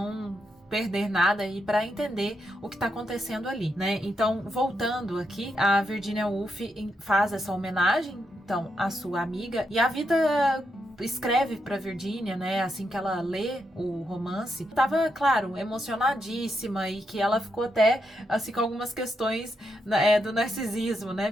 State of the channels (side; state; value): both; normal; correlation 0.82